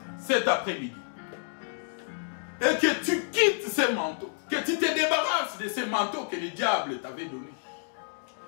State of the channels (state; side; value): silent; right; digital silence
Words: cet après-midi, et que tu quittes ces manteaux, que tu te débarrasses de ces manteaux que le diable t'avait donnés,